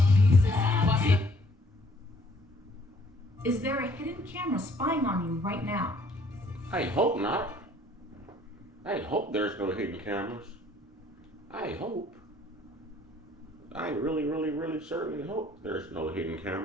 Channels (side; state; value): both; normal; correlation 0.60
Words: Is there a hidden camera spying on you right now? I hope not. I hope there's no hidden cameras. I hope. I really, really, really certainly hope there's no hidden